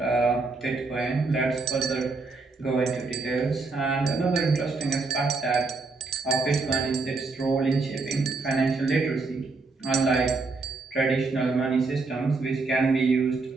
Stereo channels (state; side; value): quieter; left; 4.0 dB